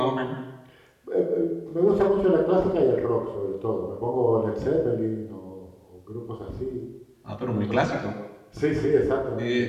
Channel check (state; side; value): identical; both; correlation 1.00